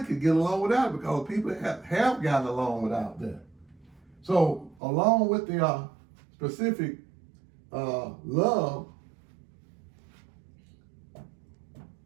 could get along without, because people have gotten along without that. So along with the specific love,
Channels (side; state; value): left; drops out; at 4.8 s